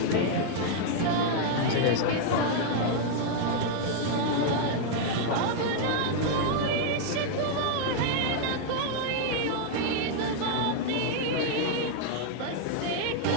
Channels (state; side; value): different; both; correlation 0.00